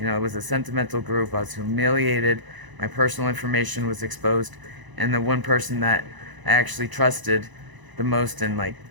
was a sentimental group. I was humiliated. My personal information was exposed, and the one person that I actually trusted the most, and like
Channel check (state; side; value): late; left; 1.0 ms